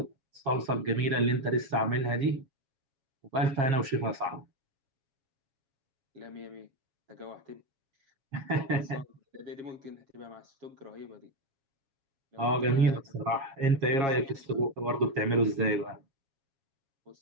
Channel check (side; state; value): left; late; 7.3 ms